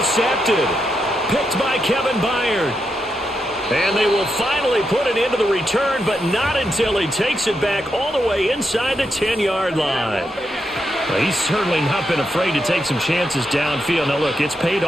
Picked by Kevin Byard. And they will finally put it into the return, but not until he takes it back all the way inside the 10-yard line. Well, he's certainly not been afraid to take some chances downfield. Now, look, it's paid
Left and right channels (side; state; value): both; normal; correlation 0.83